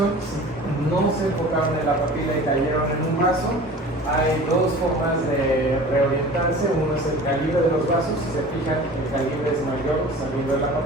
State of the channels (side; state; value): both; normal; correlation 0.41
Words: Si no se enfocaron en la papila y cayeron en un vaso, hay dos formas de reorientarse. Uno es el calibre de los vasos. Si se fijan, el calibre es mayor saliendo de la